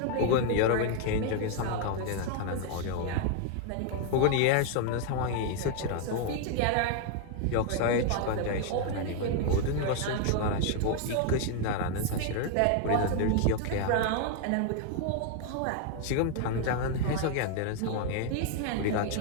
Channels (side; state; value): both; different; correlation 0.00